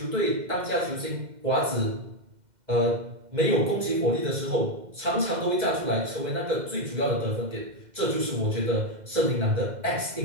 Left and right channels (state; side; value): late; left; 2.1 ms